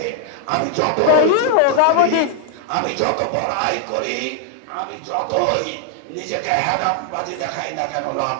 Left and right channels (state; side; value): different; both; correlation 0.00